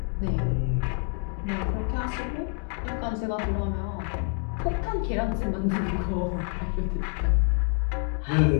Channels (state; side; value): quieter; right; 39.2 dB